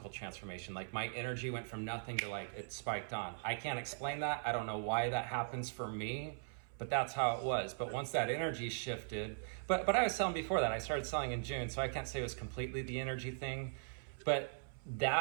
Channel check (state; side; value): silent; left; 51 dB below the other